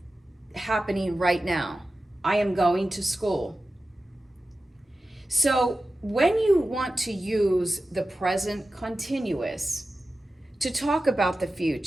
happening right now. I am going to school. So when you want to use the present continuous to talk about the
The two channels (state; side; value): normal; both; correlation 0.93